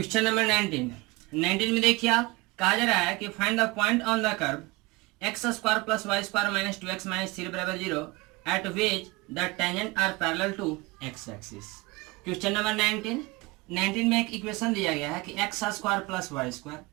नंबर 19 में देखिए, आप कहा जा रहा है कि find the point on the curve x square plus y square minus 2x minus 3 बराबर 0 at which the tangent are parallel to x axis. Question number 19 में एक इक्वेशन दिया गया है कि x square plus y square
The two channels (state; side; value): quieter; left; 23.5 dB